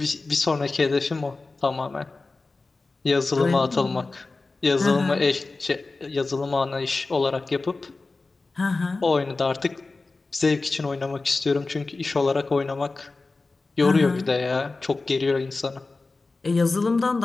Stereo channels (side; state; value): right; quieter; 3.6 dB